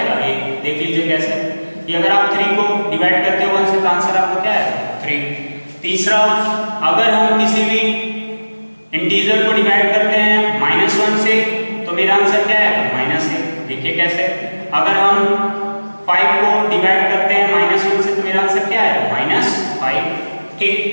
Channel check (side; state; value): both; inverted; correlation -1.00